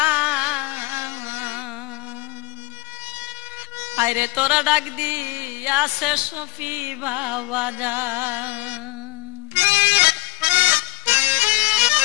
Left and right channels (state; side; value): quieter; right; 23.7 dB